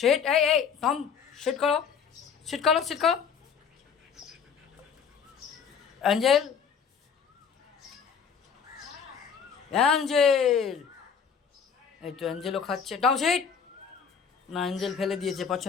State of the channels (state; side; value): quieter; right; 6.7 dB